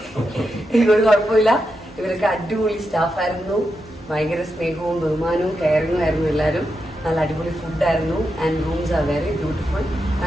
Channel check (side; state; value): both; normal; correlation 0.86